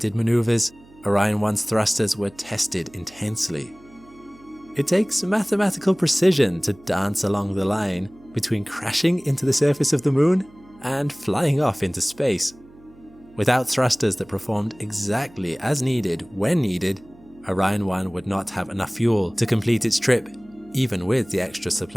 maneuvers, Orion 1's thrusters were tested intensely. It takes mathematical precision to dance along the line between crashing into the surface of the moon and flying off into space. Without thrusters that performed exactly as needed when needed, Orion 1 would not have enough fuel to complete its trip, even with the extra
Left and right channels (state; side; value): noise; right; hum, 25 dB below the sound